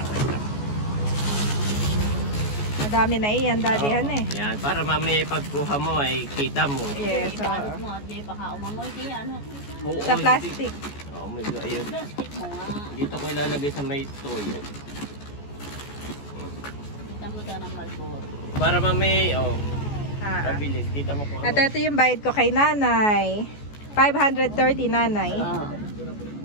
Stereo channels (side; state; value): right; late; 14 ms